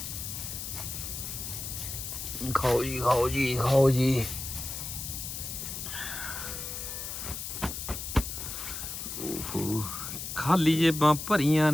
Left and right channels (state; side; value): noise; left; hiss, 6 dB below the sound